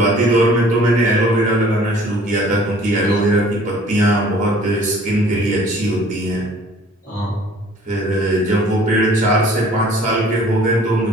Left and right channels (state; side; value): normal; both; correlation 0.52